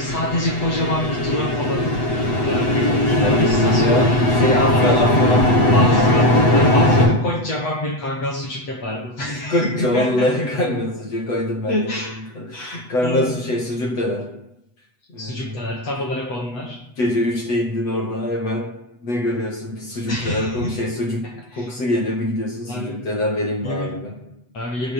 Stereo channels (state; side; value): late; right; 8.1 ms